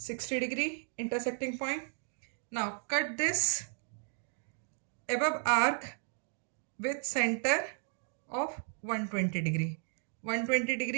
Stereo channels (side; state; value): left; silent; 55 dB below the other